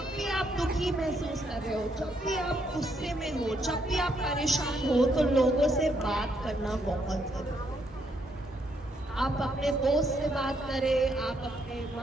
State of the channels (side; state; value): both; normal; correlation 0.74